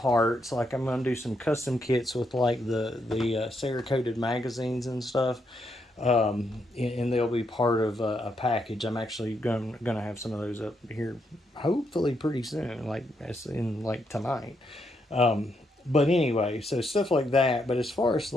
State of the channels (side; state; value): both; normal; correlation 0.78